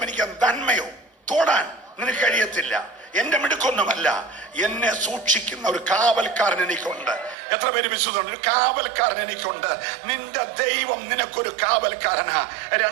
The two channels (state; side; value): drops out; left; at 7.4 s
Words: എനിക്ക് നന്മയോ തൊടാൻ നിനക്ക് കഴിയത്തില്ല. എന്റെ മിടുക്കൊന്നുമല്ല, എന്നെ സൂക്ഷിക്കുന്ന ഒരു കാവൽക്കാരൻ എനിക്കുണ്ട്. എത്ര പേര് വിശ്വസിക്കുന്നുണ്ട്? ഒരു കാവൽക്കാരൻ എനിക്കുണ്ട്. നിന്റെ ദൈവം നിനക്കൊരു കാവൽക്കാരനാ.